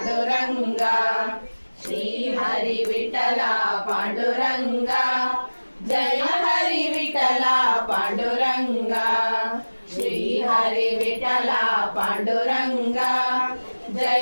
ಶ್ರೀ ಹರಿ ವಿಠಲ ಪಾಂಡುರಂಗ, ಜಯ ಹರಿ ವಿಠಲ ಪಾಂಡುರಂಗ, ಶ್ರೀ ಹರಿ ವಿಠಲ ಪಾಂಡುರಂಗ,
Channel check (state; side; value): inverted; both; correlation -1.00